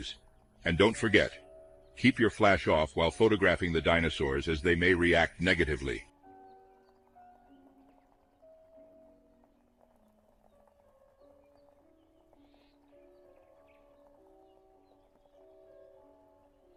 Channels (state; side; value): identical; both; correlation 1.00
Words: And don't forget, keep your flash off while photographing the dinosaurs as they may react negatively.